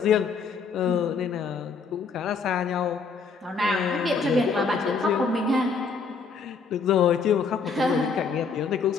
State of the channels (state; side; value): quieter; right; 5.0 dB